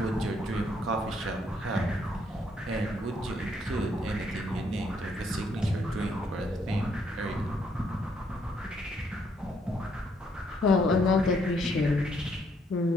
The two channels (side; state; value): both; normal; correlation 0.71